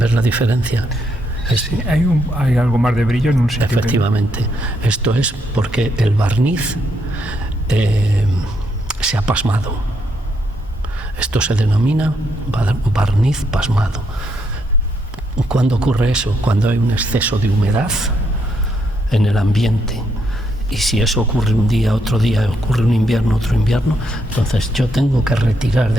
la diferencia? Sí, hay algo más de brillo en un sitio. Efectivamente. Esto es porque el barniz se ha pasmado. Esto se denomina barniz pasmado. ¿Cuándo ocurre eso? Cuando hay un exceso de humedad en el ambiente. Y si eso ocurre un día, otro día, ocurre un invierno, otro invierno, entonces yo tengo que retirar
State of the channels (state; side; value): normal; both; correlation 0.76